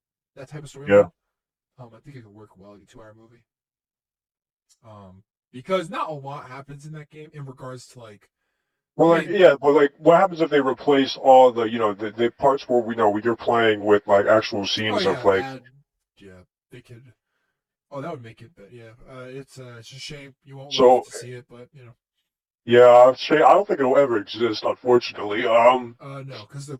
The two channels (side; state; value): both; identical; correlation 1.00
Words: that type of Yeah. storyline. I think it could work well, like a 2 hour movie. Because not a lot happens in that game in regards to like, Well, I like, mean, yeah, but like, what happens if they replace all the, the parts where we know you're playing with like actual oh scenes of yeah, like, add, yeah, they could. Oh, that would make it, but yeah, it's a shame you won't live so to see it, but you know, yeah, I don't think it'll ever exist, unfortunately. no, because the